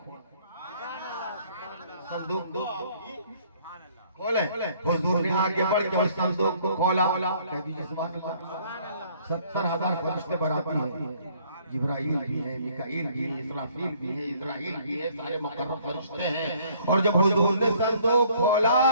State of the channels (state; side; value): inverted; both; correlation -0.60